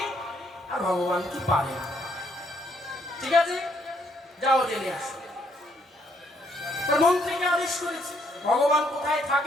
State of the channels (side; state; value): both; normal; correlation 0.70